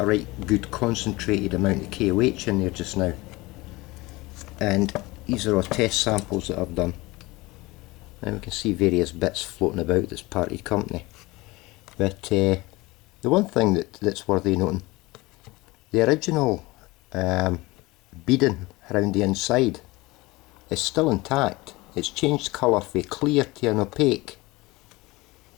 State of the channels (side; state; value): right; quieter; 21.7 dB